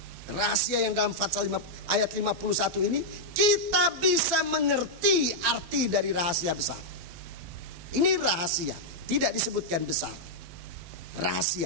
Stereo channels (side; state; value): left; late; 12 ms